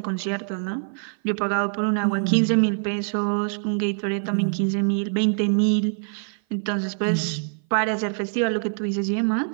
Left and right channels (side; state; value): left; silent; 56 dB below the other